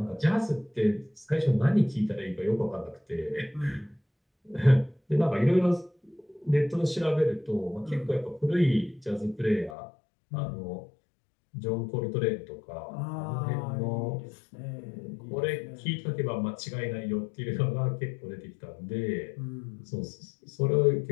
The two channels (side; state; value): right; drops out; at 9.8 s